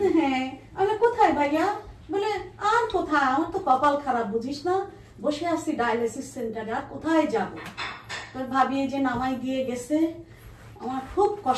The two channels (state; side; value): identical; both; correlation 1.00